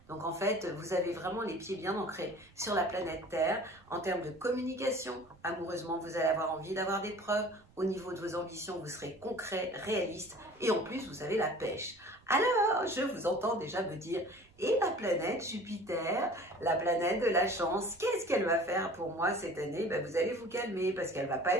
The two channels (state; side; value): noise; right; rumble, 29 dB below the sound